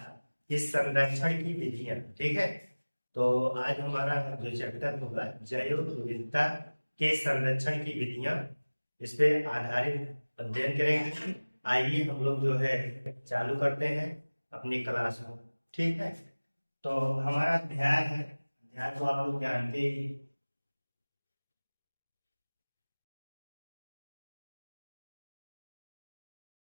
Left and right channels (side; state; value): both; inverted; correlation -1.00